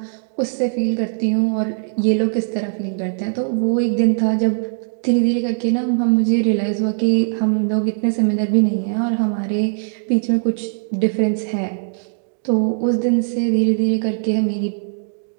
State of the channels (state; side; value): silent; left; digital silence